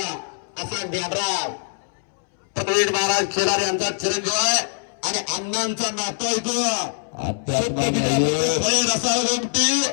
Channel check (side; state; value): right; silent; 64 dB below the other